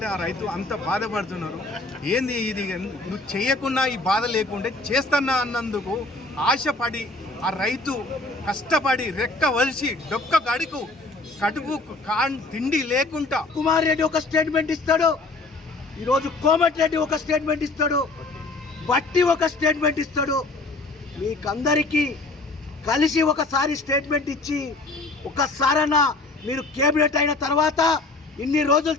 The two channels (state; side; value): quieter; right; 3.2 dB